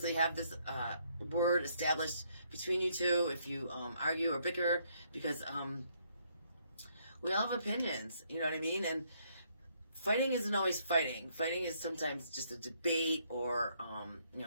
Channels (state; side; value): inverted; both; correlation -0.70